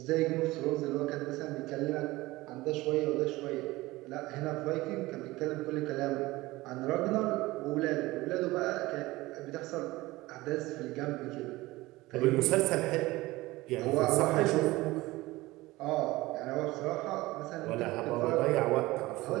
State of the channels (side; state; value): left; quieter; 19.5 dB